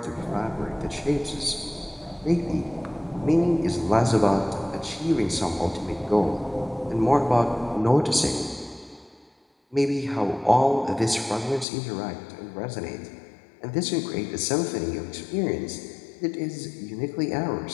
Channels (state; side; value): drops out; right; at 11.7 s